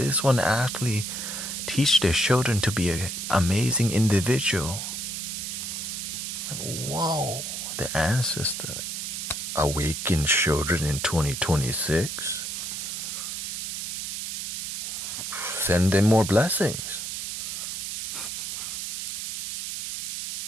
one actually teach their children to be an amazing individual. Like, whoa, the ancestor. Awaken children in 2026. Send them more blessings.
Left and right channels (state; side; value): noise; right; hiss, 4 dB below the sound